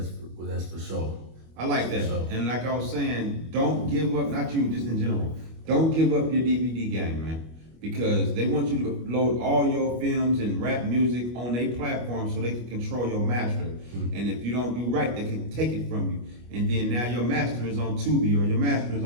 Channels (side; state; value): left; late; 25 ms